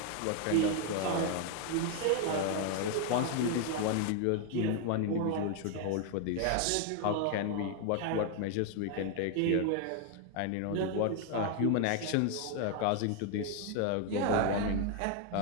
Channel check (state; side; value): different; both; correlation 0.00